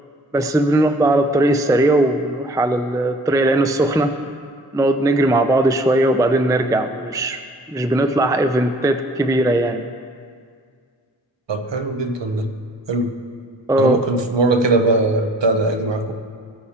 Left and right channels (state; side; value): normal; both; correlation 0.54